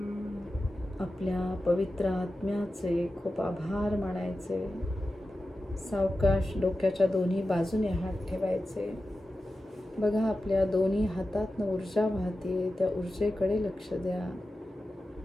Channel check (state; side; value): normal; both; correlation 0.93